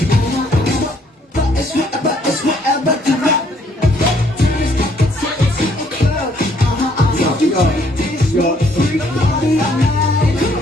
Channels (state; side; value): normal; both; correlation 0.65